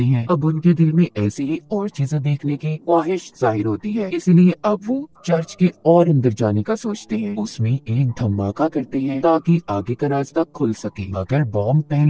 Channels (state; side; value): identical; both; correlation 1.00